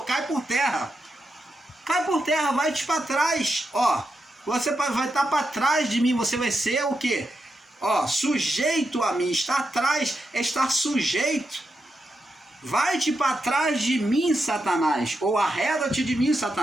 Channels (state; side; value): normal; both; correlation 0.85